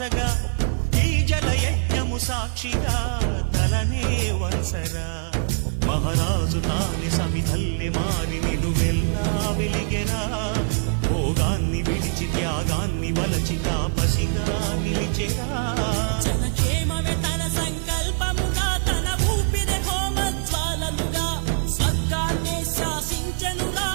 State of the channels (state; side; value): silent; left; 58 dB below the other